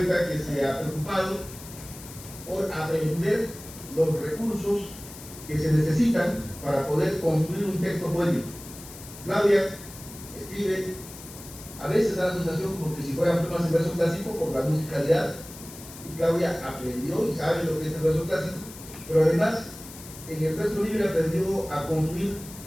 que se ha preocupado por aprender los recursos que se necesitan para poder construir un texto poético. Claudia escribe, a veces da la sensación como que si fueran poemas en verso clásico por la musicalidad, y Claudia aprendió y sabe lo que es el verso clásico, pero además en el verso libre aprendió a construir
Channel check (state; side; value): noise; left; hiss, 15 dB below the sound